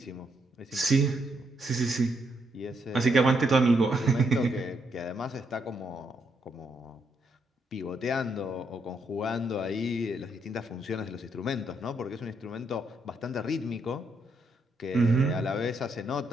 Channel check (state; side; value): normal; both; correlation 0.77